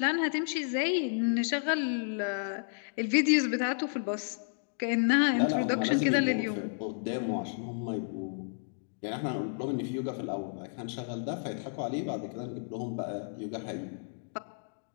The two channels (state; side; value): silent; right; digital silence